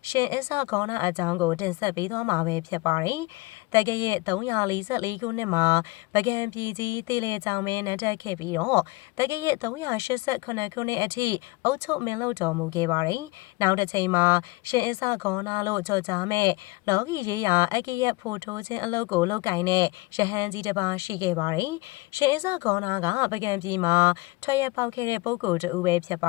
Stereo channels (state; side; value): quieter; right; 23.0 dB